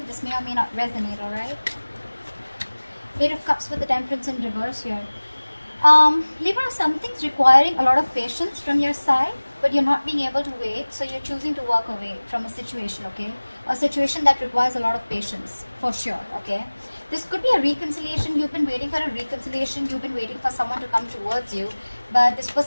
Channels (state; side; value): inverted; both; correlation -1.00